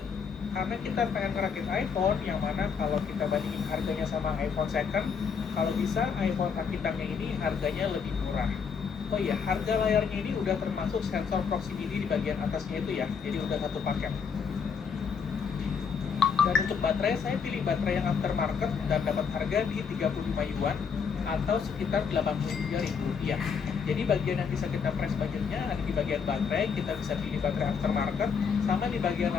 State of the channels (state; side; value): quieter; right; 6.2 dB